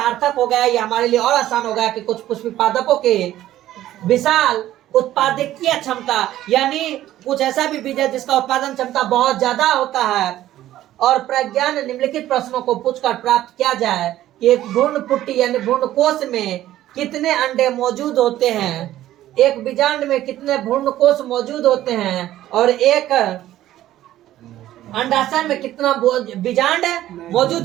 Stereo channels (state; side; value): quieter; left; 13.6 dB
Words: हो गया, यह हमारे लिए और आसान हो गया कि कुछ पुष्पी पादपों के विशाल उत्पादकीय क्षमता, यानी कुछ ऐसा भी बीज है जिसका उत्पादन क्षमता बहुत ज्यादा होता है। और प्रज्ञान निम्नलिखित प्रश्नों को पूछकर प्राप्त किया जाए कि एक भ्रूण पुट्टी यानी भ्रूण कोश में कितने अंडे मौजूद होते हैं, एक बीजांड में कितने भ्रूण कोश मौजूद होते हैं, और एक अंडाशय में कितना बीजांड